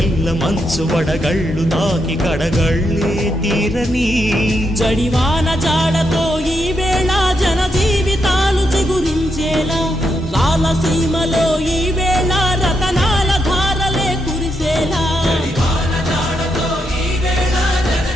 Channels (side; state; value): both; normal; correlation 0.82